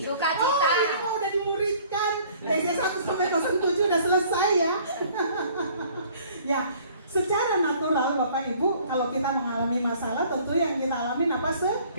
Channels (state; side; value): inverted; both; correlation -0.55